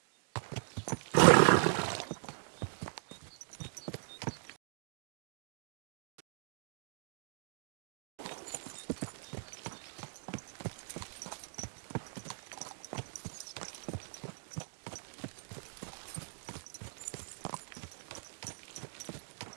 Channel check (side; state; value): left; silent; digital silence